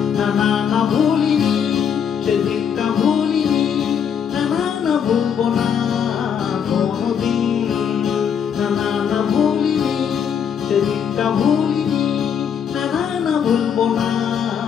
না না না ভুলিনি সেদিনটা, ভুলিনি না না না ভুলবো না কোনোদিন। না না না ভুলিনি সেদিনটা, ভুলিনি না না না ভুলবো না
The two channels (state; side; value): quieter; right; 7.7 dB